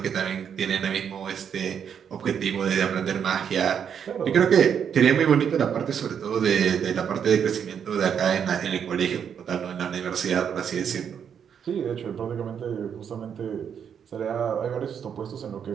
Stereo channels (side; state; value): left; quieter; 7.9 dB